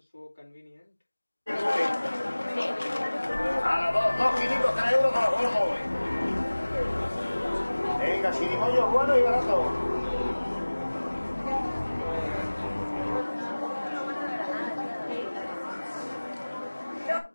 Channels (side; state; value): both; inverted; correlation -1.00